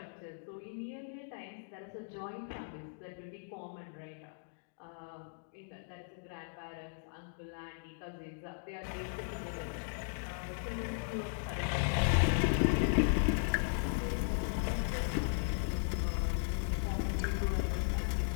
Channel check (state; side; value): silent; right; digital silence